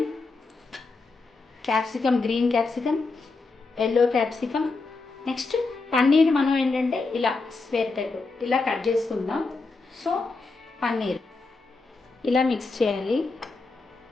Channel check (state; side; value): quieter; right; 3.8 dB